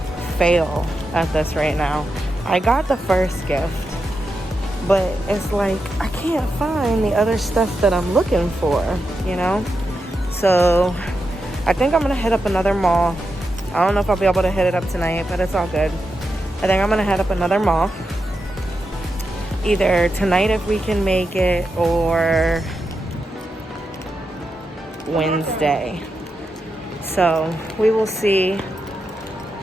fail at this right now. I got the first gift, but it's like I can't find the other stuff that I'm looking for, you know? So I think I'm gonna hit up another mall. I don't know if I'll be able to hit it up tonight, but it's all good. I think I'm gonna head up another mall. Either tonight if we can make it, or Wednesday. So we will see.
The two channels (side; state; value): both; normal; correlation 0.87